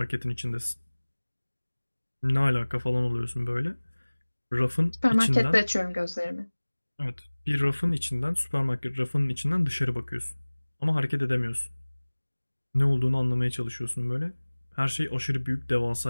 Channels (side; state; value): both; inverted; correlation -1.00